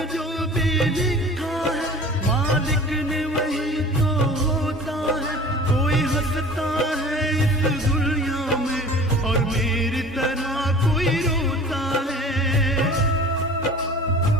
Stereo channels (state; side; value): normal; both; correlation 0.42